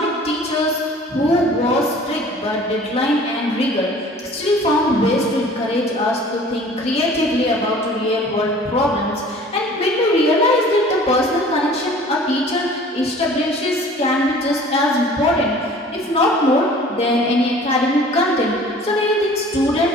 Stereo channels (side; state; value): both; normal; correlation 0.48